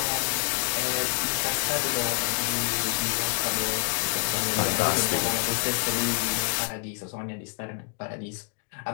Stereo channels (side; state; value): right; quieter; 35.5 dB